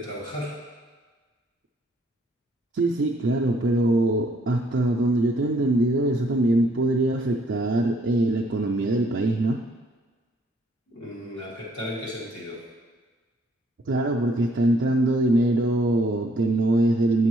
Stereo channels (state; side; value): normal; both; correlation 0.66